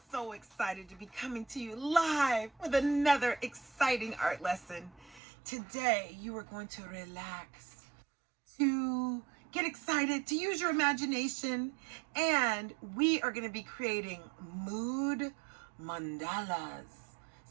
so excited to be coming to you live with another exciting art lesson. Today, you are going to relax, to get excited, to use your imagination, and we are going to be creating mood mandalas.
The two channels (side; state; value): left; drops out; at 5.2 s